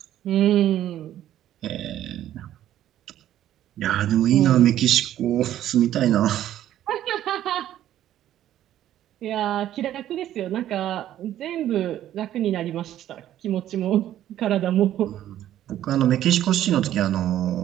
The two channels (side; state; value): left; quieter; 12.2 dB